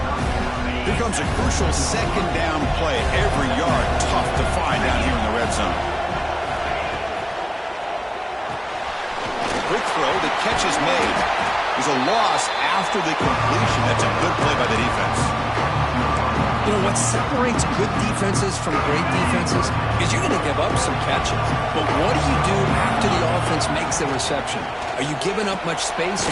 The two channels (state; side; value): identical; both; correlation 1.00